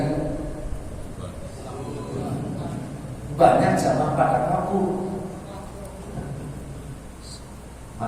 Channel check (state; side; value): identical; both; correlation 1.00